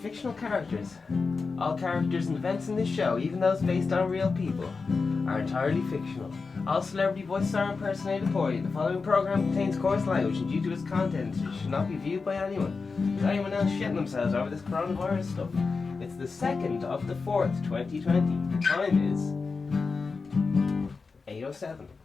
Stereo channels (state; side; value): quieter; right; 4.5 dB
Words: characters. All characters and events in this show, even those based on real people, are entirely fictional. All celebrity voices are impersonated poorly. The following program contains coarse language and due to its content it should not be viewed by anyone. Is anyone else shitting themselves over this coronavirus stuff? It's the 2nd of the 4th, 2020. The time is 8:07.